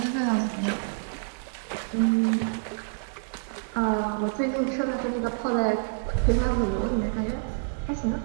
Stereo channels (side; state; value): left; silent; 59 dB below the other